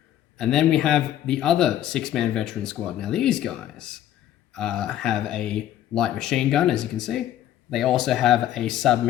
And then we have the other 6-man veteran squad. Now these guys have a light machine gun, as you can see. They also have a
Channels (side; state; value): right; quieter; 12.0 dB